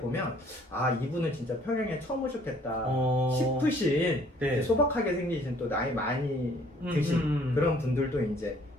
이분은 진짜 평양에 처음 오셨겠다 싶으신 소박하게 생기신 또 나이 많이 드신 그런 분들도 이제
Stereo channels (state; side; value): normal; both; correlation 0.59